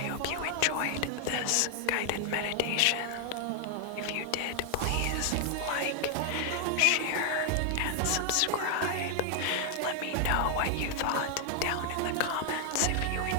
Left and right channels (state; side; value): different; both; correlation 0.00